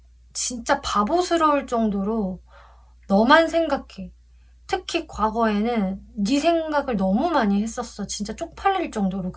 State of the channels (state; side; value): identical; both; correlation 1.00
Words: 진짜 바보스러울 정도로 너만 생각해. 특히 과거에는 네 생각을 너무 많이 했었어. 진짜 쪽팔릴 정도로